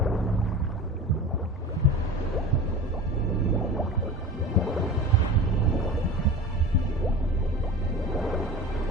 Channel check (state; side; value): normal; both; correlation 0.34